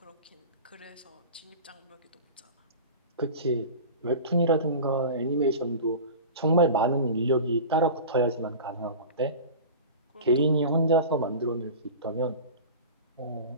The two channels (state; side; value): inverted; both; correlation -0.34